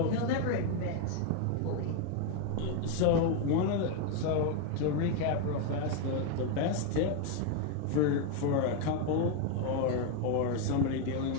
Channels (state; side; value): different; both; correlation 0.01